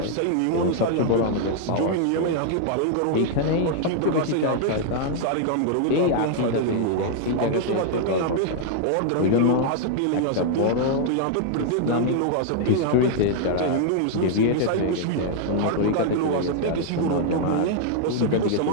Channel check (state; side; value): different; both; correlation -0.01